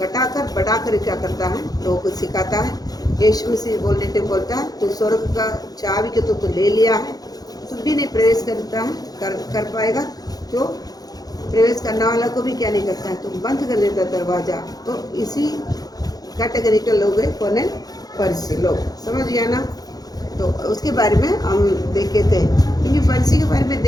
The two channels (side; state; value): right; late; 0.19 ms